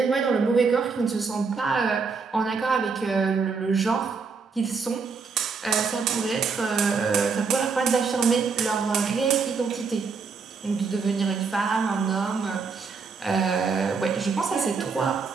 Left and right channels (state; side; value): quieter; left; 5.0 dB